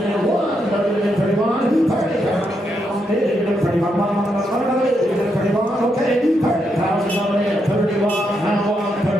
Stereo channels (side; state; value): both; normal; correlation 0.80